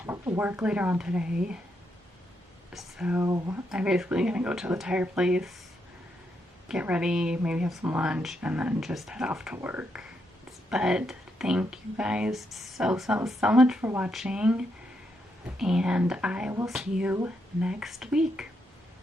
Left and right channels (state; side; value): normal; both; correlation 0.80